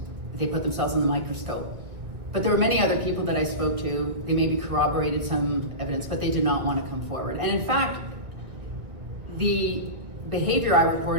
they put themselves in the microscope. But there were many other people that I spoke to. They maybe corroborated some evidence, but they did not want to come forward. And in fact, the behavior I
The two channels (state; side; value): late; left; 2.1 ms